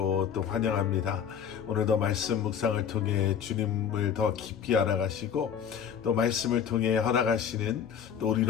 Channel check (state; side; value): quieter; right; 7.9 dB